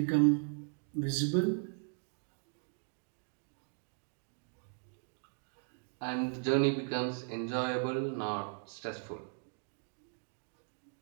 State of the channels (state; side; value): silent; left; 53 dB below the other